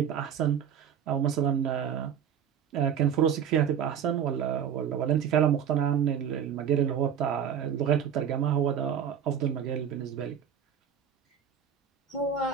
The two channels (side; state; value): left; quieter; 8.5 dB